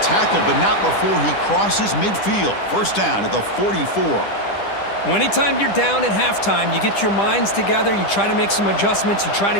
but not before he crosses midfield. 1st down at the 44. Well, anytime you're down at halftime, you get your minds together, you try to make some adjustments, you try to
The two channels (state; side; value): late; right; 10 ms